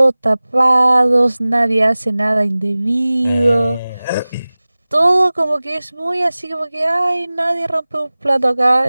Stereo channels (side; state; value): both; inverted; correlation -0.99